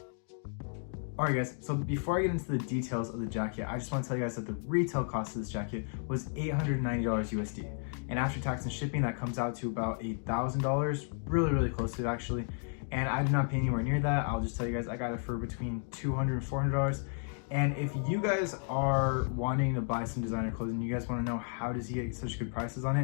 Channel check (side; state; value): right; silent; 56 dB below the other